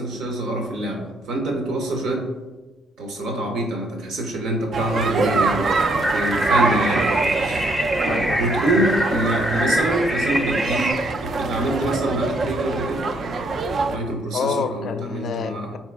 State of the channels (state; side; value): normal; both; correlation 0.69